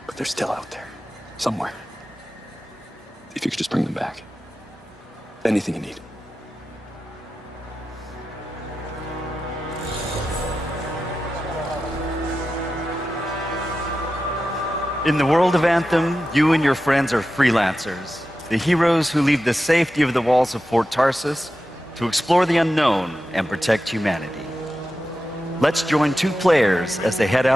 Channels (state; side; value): normal; both; correlation 0.92